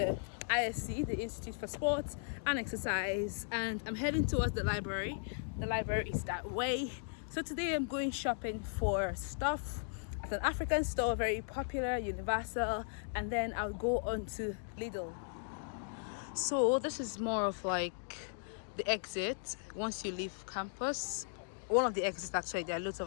ISC, the Institute for Sports and Exercise, and I'm heading towards the library. The library is that way. So today I'm going shopping for stuff at an African store, very popular, Universal, and then I'll go on to Lidl. So this is more of like the exit once you leave campus. One of the exits, actually. There are lots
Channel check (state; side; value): silent; right; digital silence